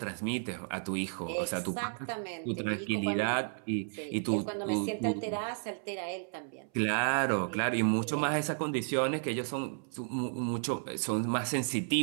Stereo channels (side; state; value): left; silent; 56 dB below the other